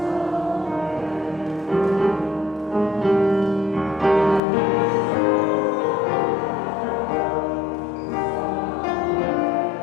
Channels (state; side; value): drops out; right; at 4.4 s